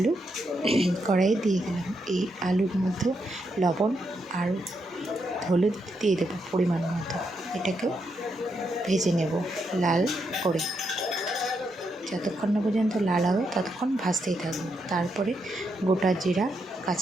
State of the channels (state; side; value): normal; both; correlation 0.81